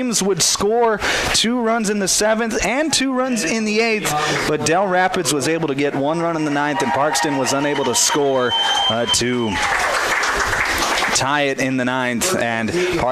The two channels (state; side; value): identical; both; correlation 1.00